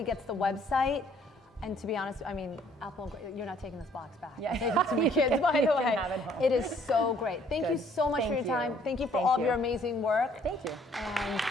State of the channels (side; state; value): both; normal; correlation 0.61